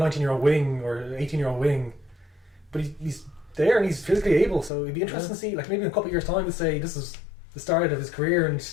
wing or an 18-year-old wing, but he's there and he's physically able. So it'd be interesting to see, like maybe in a couple of years' time, to say this is the start of his career, and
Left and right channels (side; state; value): right; drops out; at 4.7 s